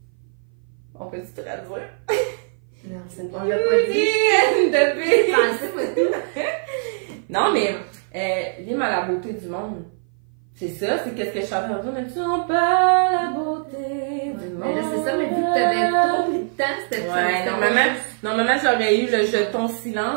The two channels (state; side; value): silent; left; 57 dB below the other